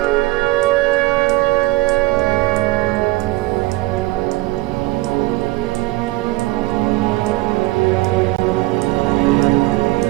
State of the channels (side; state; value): left; quieter; 19.7 dB